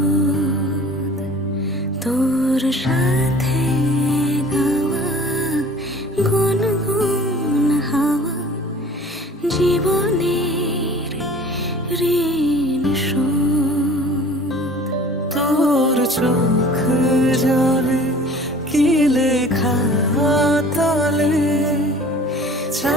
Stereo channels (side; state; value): both; normal; correlation 0.46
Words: তোর সাথে গাওয়া গুনগুন হাওয়া জীবনের ঋণ শোধ। তোর চোখ জলে কি লেখা তলে